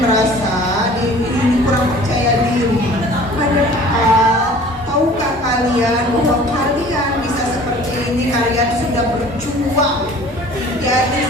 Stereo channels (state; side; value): normal; both; correlation 0.47